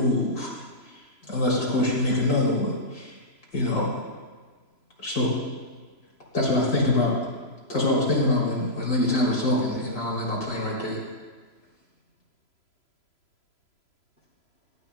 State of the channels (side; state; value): right; late; 3.0 ms